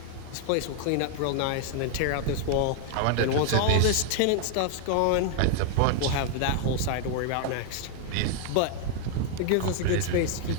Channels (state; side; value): different; both; correlation 0.00